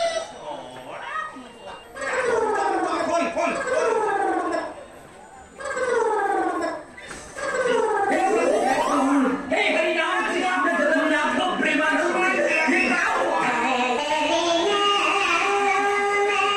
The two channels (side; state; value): both; identical; correlation 1.00